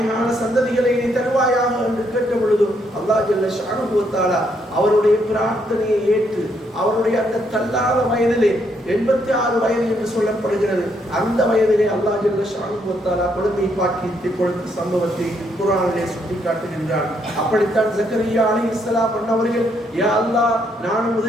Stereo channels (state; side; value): normal; both; correlation 0.74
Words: சந்ததிகளை நீ தருவாயாக என்று கேட்ட பொழுது அல்லாஹ் ஜல்ல ஷானுஹு வ தஆலா அவருடைய பிரார்த்தனையை ஏற்று அவருடைய அந்த தள்ளாத வயதிலே 86 வயது என்று சொல்லப்படுகிறது, அந்த வயதிலே அல்லாஹ் ஜல்ல ஷானுஹு வ தஆலா குழந்தை பாக்கியத்தை கொடுத்த சம்பவத்தை குர்ஆனிலே சுட்டிக்காட்டுகின்றார். அப்படித்தான் ஜக்கரியா அலைஹிஸ்ஸலாம் அவர்கள், யா அல்லாஹ், நான்